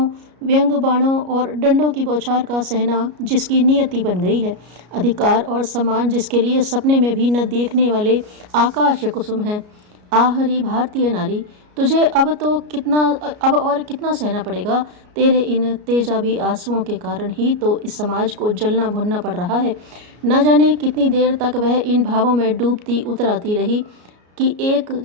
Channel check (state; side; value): late; left; 33 ms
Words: व्यंग बाणों और डंडों की बौछार का सहना जिसकी नियति बन गई है। अधिकार और सम्मान जिसके लिए सपने में भी न देखने वाले आकाश कुसुम है। आहरी भारतीय नारी, तुझे अब और कितना सहना पड़ेगा? तेरे इन तेजाबी आंसुओं के कारण ही तो इस समाज को जलना भुनना पड़ रहा है। न जाने कितनी देर तक वह इन भावों में डूबती उतराती रही कि एक